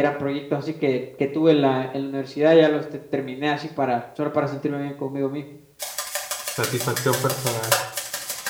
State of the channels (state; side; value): identical; both; correlation 1.00